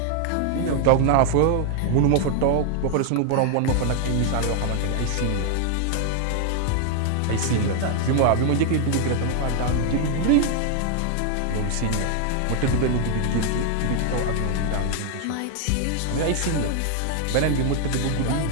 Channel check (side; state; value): both; different; correlation 0.00